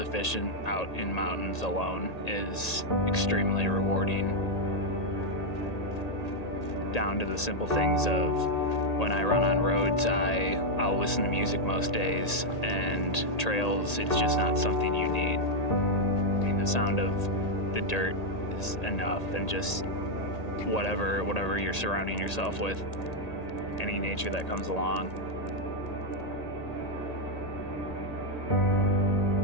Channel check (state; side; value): late; right; 1.8 ms